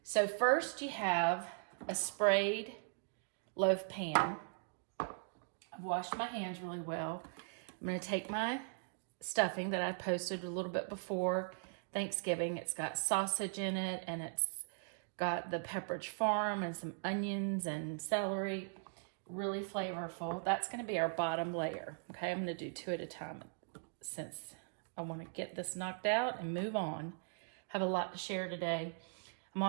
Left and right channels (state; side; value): silent; left; digital silence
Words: So first you have a sprayed loaf pan. I've washed my hands really well. I'm going to take my stuffing that I posted a little bit before Thanksgiving. It's got sausage in it, and it's got the Pepperidge Farm and some onions and celery. Really flavorful. That's going to be our bottom layer. Okay, I'm going to do 2 at a time since I want to get this knocked out and move on. Have a lot to share today. I'm